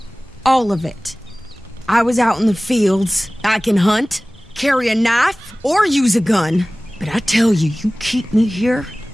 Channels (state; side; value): normal; both; correlation 0.98